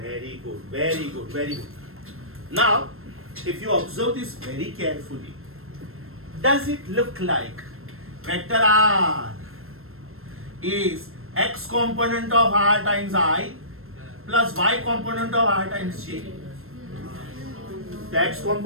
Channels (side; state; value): left; late; 0.62 ms